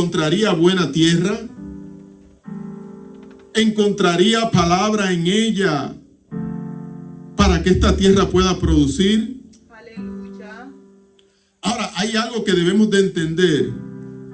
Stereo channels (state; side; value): identical; both; correlation 1.00